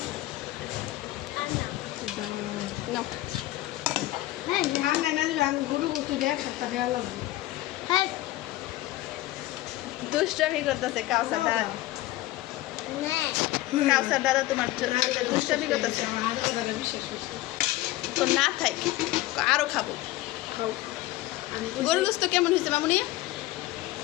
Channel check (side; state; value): right; quieter; 16.9 dB